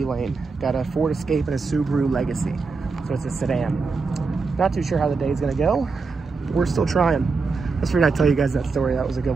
lane. Got a Ford Escape and a Subaru Legacy. So it's a sedan. Not too sure how the day's going to go. We're still trying. Let's figure I'd tell you guys that story. That was a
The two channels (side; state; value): left; quieter; 4.4 dB